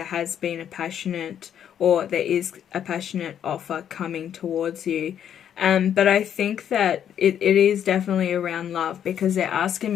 has been a passionate, or there is a passionate offer coming towards you. But I think that it is definitely around love, because they're asking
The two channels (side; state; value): right; quieter; 9.3 dB